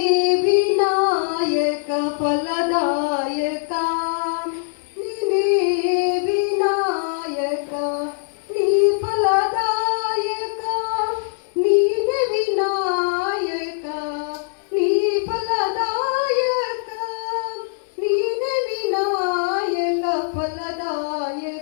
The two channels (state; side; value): silent; right; digital silence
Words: ಫಲದಾಯಕ ನೀನೇ ವಿನಾಯಕ ನೀ ಫಲದಾಯಕ ನೀನೇ ವಿನಾಯಕ ನೀ ಫಲದಾಯಕ ನೀನೇ ವಿನಾಯಕ